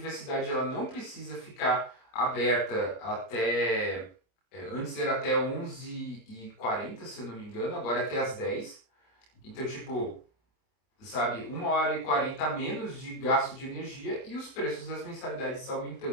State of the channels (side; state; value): right; late; 27 ms